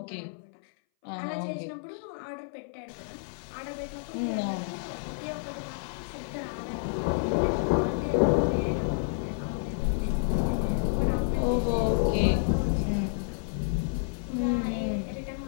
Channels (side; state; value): right; silent; 58 dB below the other